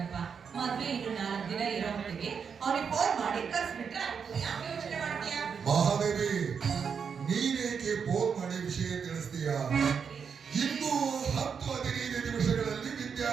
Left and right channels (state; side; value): quieter; left; 6.5 dB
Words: ಮದ್ವೆ ಇನ್ನು 4 ದಿನ ಇರೋ ಹೊತ್ತಿಗೆ ಅವ್ರಿಗೆ ಫೋನ್ ಮಾಡಿ ಕರ್ಸ್ಬಿಟ್ರೆ ಯಾಕೆ ಯೋಚನೆ ಮಾಡ್ತೀಯಾ? ಮಹಾದೇವಿ, ನೀನೇಕೆ ಫೋನ್ ಮಾಡಿ ವಿಷಯ ತಿಳಿಸ್ತೀಯ? ಇನ್ನು 10-15 ನಿಮಿಷಗಳಲ್ಲಿ